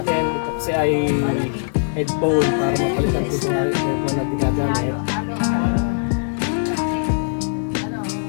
ito kasi ay headphone para mapalitan ko sa headphone na ginagamit.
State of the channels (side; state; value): right; silent; digital silence